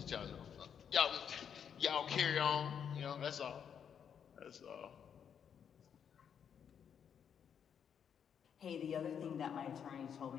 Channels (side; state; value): right; quieter; 7.9 dB